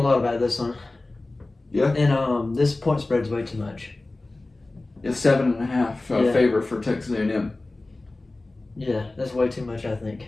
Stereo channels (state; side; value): quieter; right; 3.0 dB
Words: about this one. Yeah. And this point spread's way too much. It's 7.5 favor for Texas A&M. Yeah, that's way too much, I think.